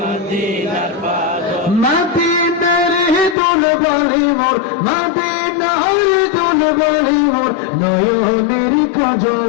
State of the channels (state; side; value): drops out; right; at 3.4 s